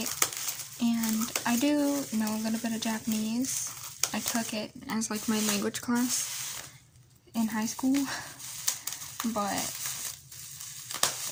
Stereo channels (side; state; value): both; identical; correlation 1.00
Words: and I do know a little bit of Japanese. I took it as like my language class in high school, but